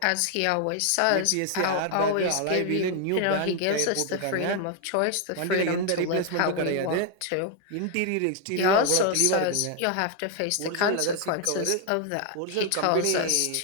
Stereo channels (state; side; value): different; both; correlation 0.01